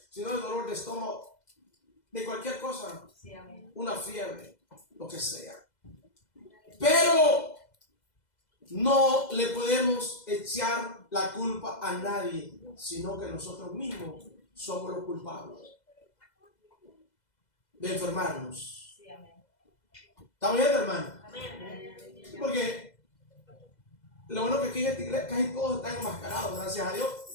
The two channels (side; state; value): right; late; 2.0 ms